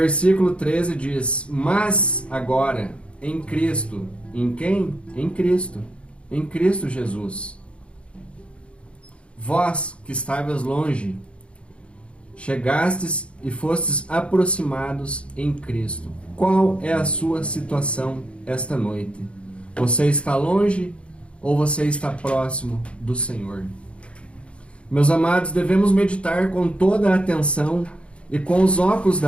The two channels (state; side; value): late; right; 0.059 ms